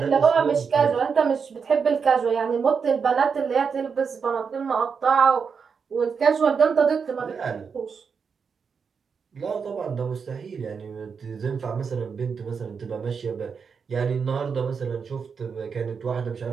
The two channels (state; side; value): quieter; left; 6.0 dB